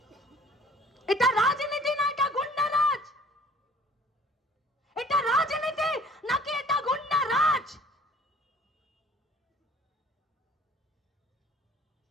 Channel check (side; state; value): both; normal; correlation 0.51